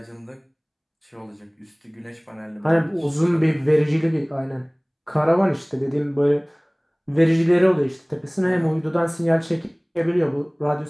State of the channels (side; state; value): both; identical; correlation 1.00